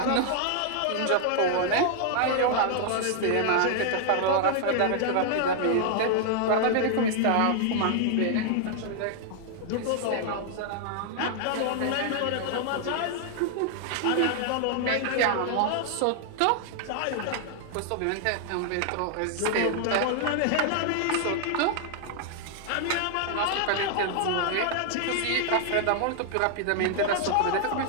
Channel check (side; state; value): both; different; correlation -0.01